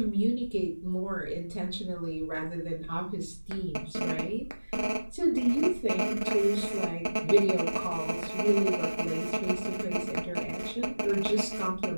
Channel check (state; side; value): inverted; both; correlation -1.00